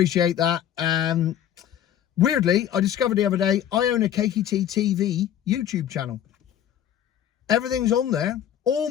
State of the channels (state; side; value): quieter; right; 10.5 dB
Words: that. Weirdly, I discovered the other day, I own a Cakey Tea TV YouTube channel. Everything's on there. All